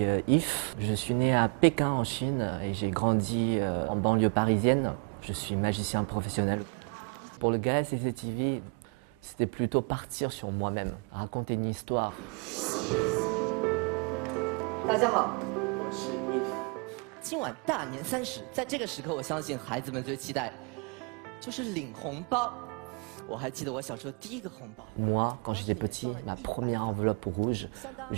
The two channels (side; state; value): left; quieter; 34.9 dB